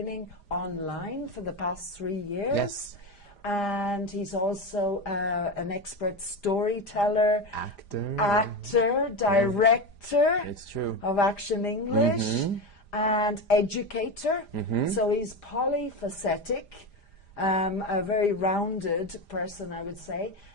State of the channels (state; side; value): late; right; 5.0 ms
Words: online for the past 3 years. Yes. And he's also an expert storyteller, actor, director it's true. of Action English, and educator. So he's polyphacetic, a very rounded person, I would say,